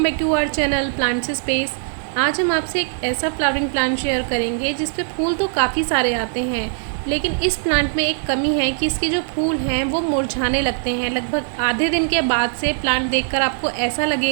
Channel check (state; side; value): silent; left; digital silence